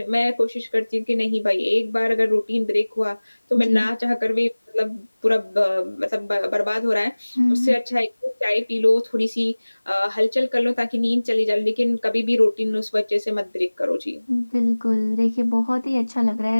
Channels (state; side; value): inverted; both; correlation -1.00